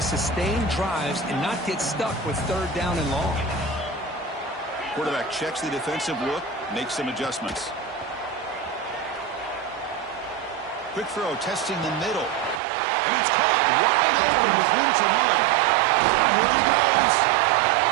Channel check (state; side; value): drops out; left; at 12.6 s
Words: sustain drives and not get stuck with third down and long. Quarterback checks the defensive look, makes some adjustments. Quick throw, testing the middle. And it's caught wide open with room to run. And here he goes.